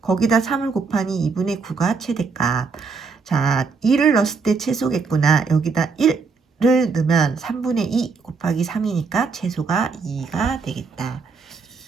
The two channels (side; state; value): left; quieter; 4.9 dB